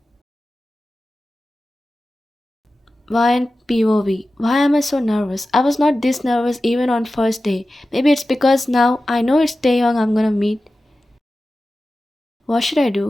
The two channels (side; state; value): both; normal; correlation 0.94